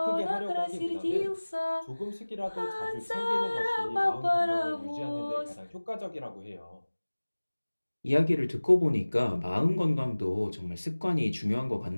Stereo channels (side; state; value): both; inverted; correlation -1.00